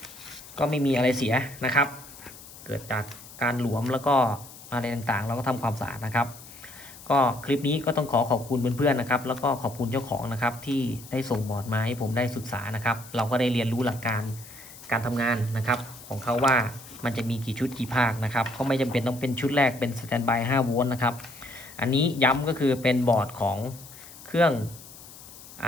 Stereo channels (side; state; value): left; noise; hiss, 18 dB below the sound